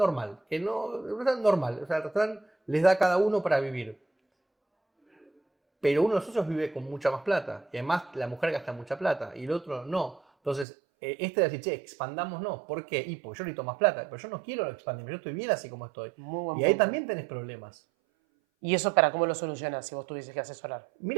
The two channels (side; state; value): left; drops out; at 10.7 s